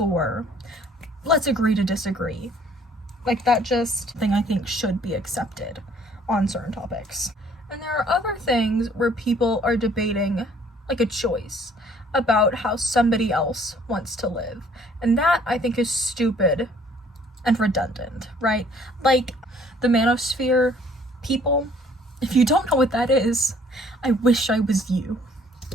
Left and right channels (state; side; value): normal; both; correlation 0.58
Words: let's agree to disagree. Like, that just thing I think should be accepted on certain topics. And there are other things where people are debating, like, a choice about how somebody else wants to live. And that, I think, is stupid and redundant, right? Like, the manosphere people, if you don't know what that is, I wish I was you.